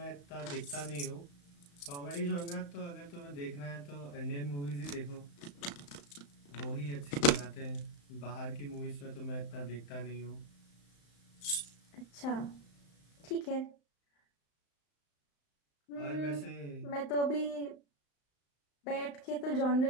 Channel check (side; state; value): right; late; 35 ms